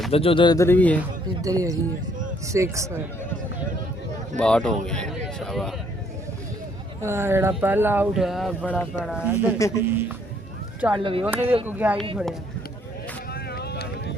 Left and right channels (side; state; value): both; normal; correlation 0.66